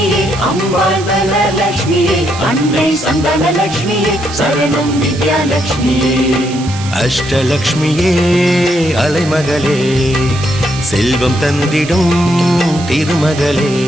அம்பாள் தனலட்சுமியே அன்னை சந்தானலட்சுமியே சரணம் வித்யாலட்சுமியே அஷ்டலக்ஷ்மியே அலைமகளே செல்வம் தந்திடும் திருமகளே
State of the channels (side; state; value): right; noise; hiss, 14 dB below the sound